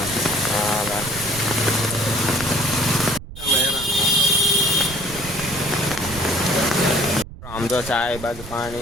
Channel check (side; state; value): right; noise; rumble, 14 dB below the sound